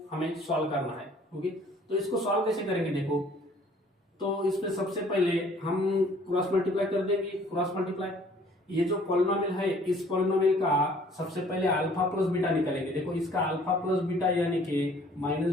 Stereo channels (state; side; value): normal; both; correlation 0.56